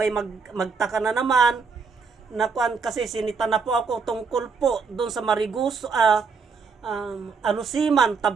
magtaka na naman na kasi sinita na po ako tungkol po doon sa Mariguso, Alusiman,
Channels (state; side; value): quieter; left; 5.2 dB